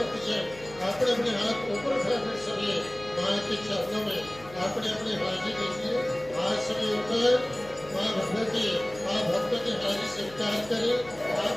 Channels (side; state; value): left; noise; hum, 19 dB below the sound